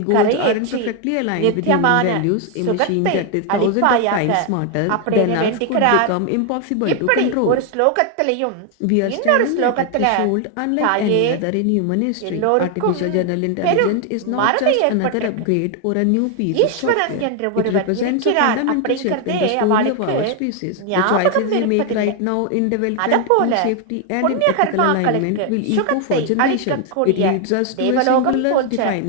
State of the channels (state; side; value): different; both; correlation 0.01